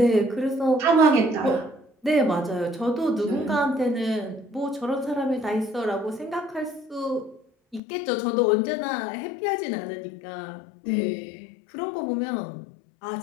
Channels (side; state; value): right; drops out; at 7.8 s